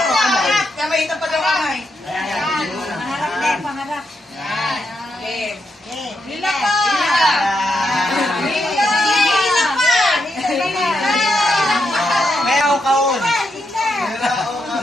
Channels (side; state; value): both; normal; correlation 0.82